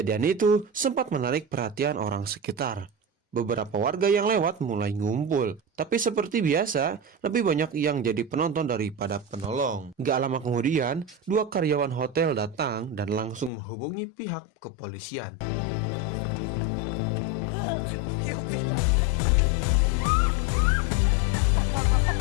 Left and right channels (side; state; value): right; drops out; at 13.5 s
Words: itu sempat menarik perhatian orang sekitar. Beberapa warga yang lewat mulai ngumpul, tapi seperti biasa, lebih banyak yang jadi penonton daripada penolong. Gak lama kemudian, dua karyawan hotel datang dan langsung menghubungi pihak kepolisian.